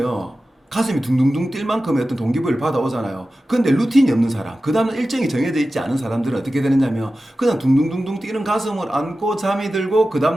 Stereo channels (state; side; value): normal; both; correlation 0.94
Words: 가슴이 둥둥둥 뛸 만큼의 어떤 동기부여를 받아오잖아요. 근데 루틴이 없는 사람, 그 다음에 일정이 정해져 있지 않은 사람들은 어떻게 되느냐면 그냥 둥둥둥둥 뛰는 가슴을 안고 잠이 들고 그